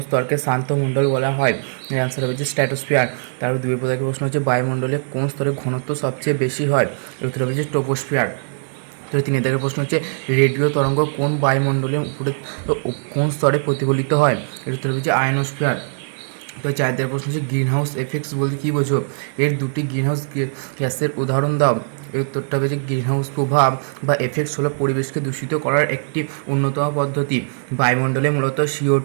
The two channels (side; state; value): left; silent; digital silence